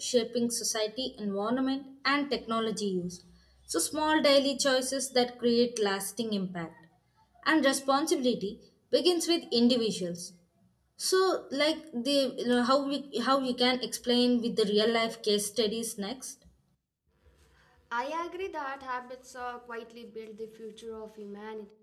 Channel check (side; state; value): both; identical; correlation 1.00